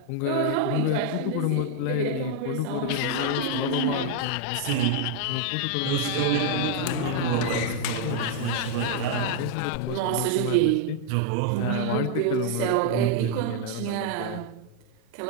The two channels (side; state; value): both; different; correlation 0.00